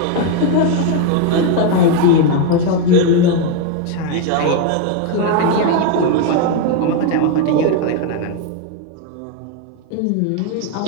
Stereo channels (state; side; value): different; both; correlation 0.02